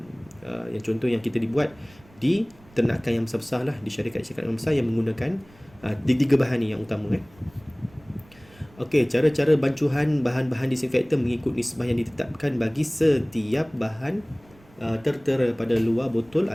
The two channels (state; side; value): noise; right; rumble, 26 dB below the sound